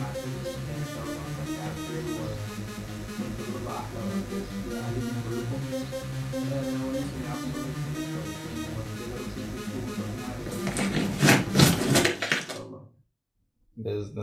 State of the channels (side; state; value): both; identical; correlation 1.00